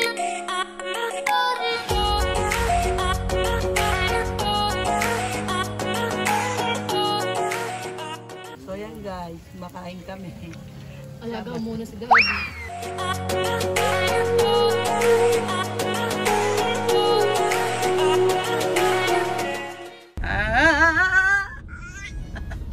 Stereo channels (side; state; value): both; identical; correlation 1.00